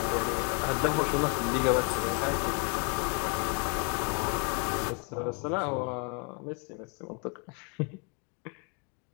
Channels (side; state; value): right; quieter; 35.4 dB